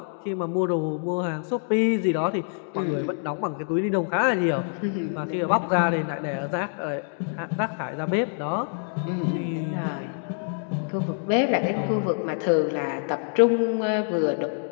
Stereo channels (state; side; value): silent; right; 61 dB below the other